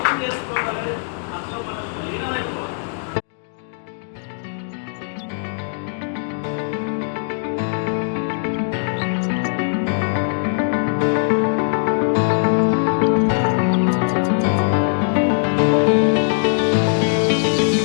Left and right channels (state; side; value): silent; right; digital silence